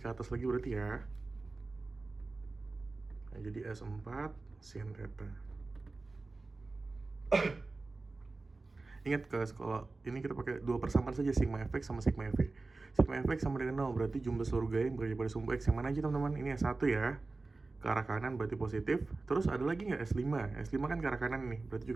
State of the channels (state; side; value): quieter; left; 3.5 dB